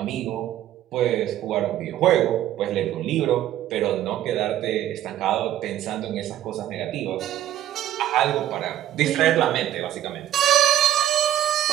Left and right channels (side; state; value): left; quieter; 12.2 dB